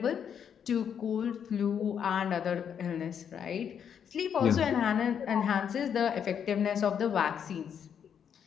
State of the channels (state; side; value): quieter; right; 8.0 dB